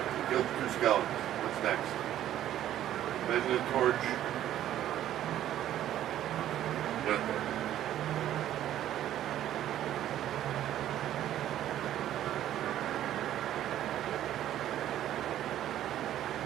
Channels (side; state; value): left; quieter; 12.1 dB